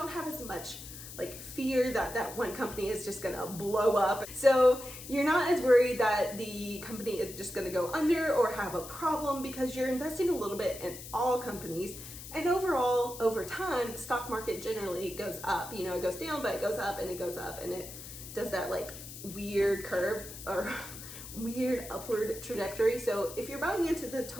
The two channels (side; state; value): left; noise; hiss, 12 dB below the sound